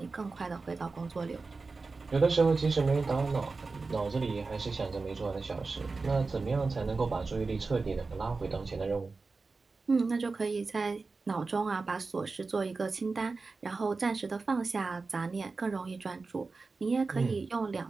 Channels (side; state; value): left; quieter; 4.0 dB